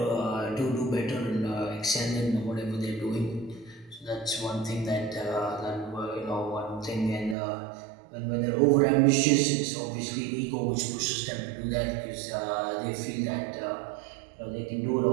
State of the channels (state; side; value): drops out; left; at 7.4 s